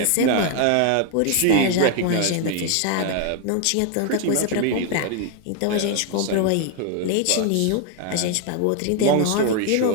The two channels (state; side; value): different; both; correlation 0.01